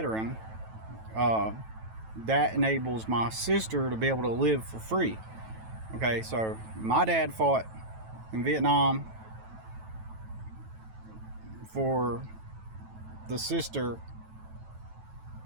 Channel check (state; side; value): late; left; 9.1 ms